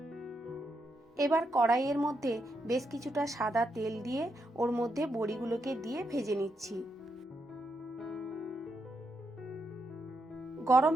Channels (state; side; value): normal; both; correlation 0.81